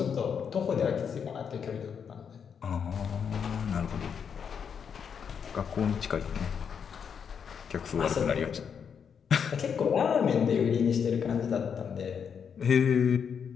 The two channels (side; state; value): right; quieter; 7.1 dB